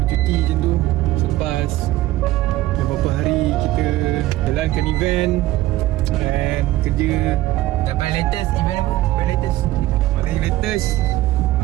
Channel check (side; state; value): left; quieter; 16.1 dB